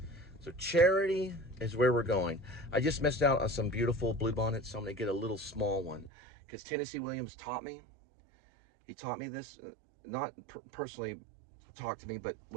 So charity is where we're going. I just missed out on some beautiful bluebonnets, so I'm gonna get a little small one. Because Tennessee Williams taught me. He taught me this, not personally talked to me, but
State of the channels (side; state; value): left; drops out; at 6.1 s